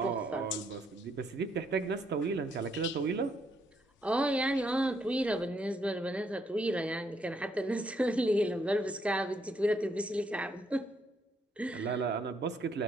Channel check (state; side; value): normal; both; correlation 0.73